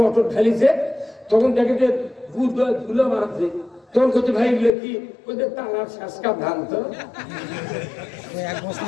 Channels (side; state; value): right; drops out; at 4.7 s